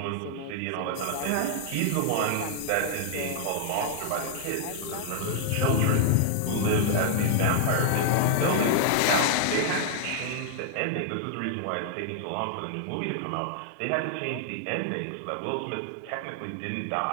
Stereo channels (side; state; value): both; different; correlation -0.01